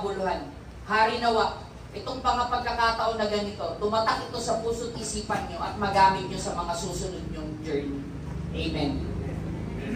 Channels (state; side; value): identical; both; correlation 1.00